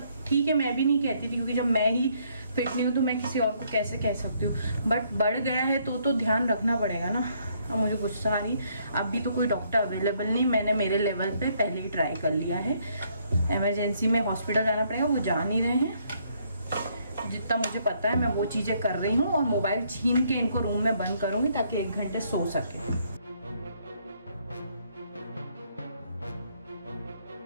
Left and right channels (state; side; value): inverted; both; correlation -0.69